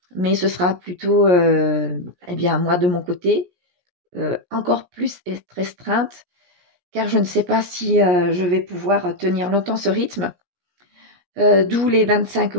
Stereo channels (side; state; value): left; late; 17 ms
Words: Mais ce sera plutôt moi de mon côté, encore plus restreinte, car je ne sais pas si je vais pouvoir tenir longtemps ce rythme. D'où les 25